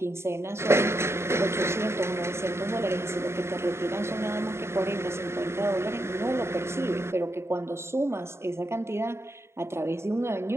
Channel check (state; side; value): late; left; 0.13 ms